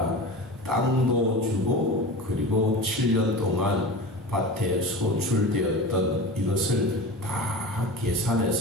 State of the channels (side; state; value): both; normal; correlation 0.31